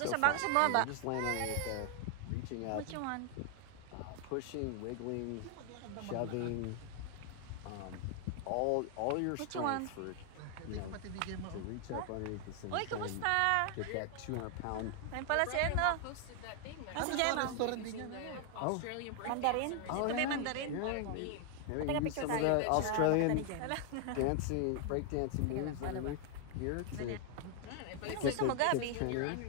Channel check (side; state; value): both; different; correlation 0.00